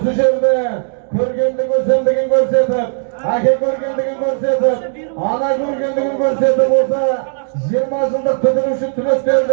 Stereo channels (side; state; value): left; silent; digital silence